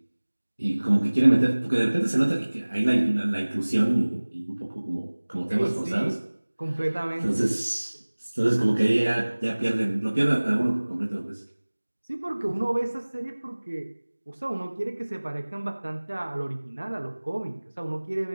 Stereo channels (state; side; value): inverted; both; correlation -1.00